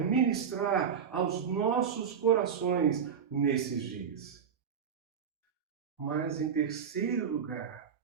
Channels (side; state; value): left; quieter; 7.3 dB